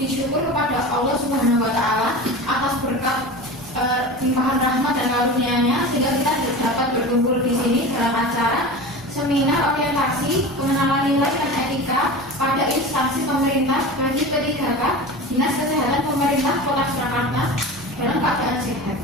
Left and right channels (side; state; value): left; noise; hum, 28 dB below the sound